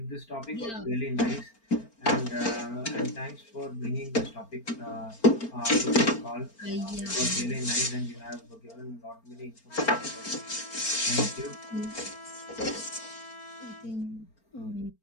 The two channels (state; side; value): late; right; 4.4 ms